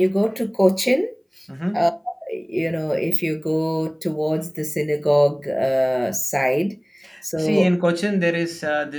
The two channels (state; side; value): identical; both; correlation 1.00